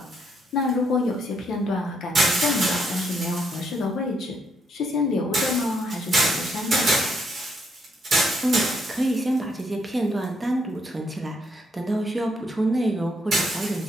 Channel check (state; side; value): normal; both; correlation 0.74